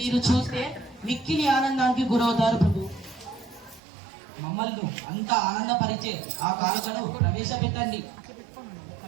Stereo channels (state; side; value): drops out; left; at 3.8 s